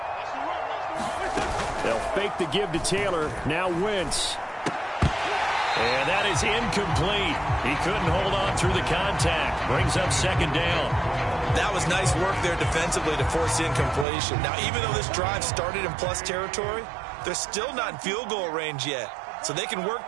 They'll fake the give to Taylor. Now Wentz. And that is incomplete. He couldn't hold on through the contact. Brings up 2nd down. That was nice work there defensively to force the incompletion. Now, even though this drive started in plus territory, they're still not in field goal range yet. So they can work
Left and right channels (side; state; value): left; drops out; at 14.1 s